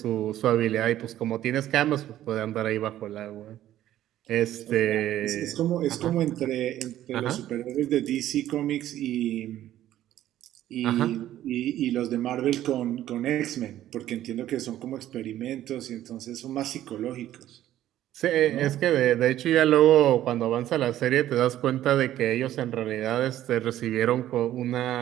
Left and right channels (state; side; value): quieter; left; 12.9 dB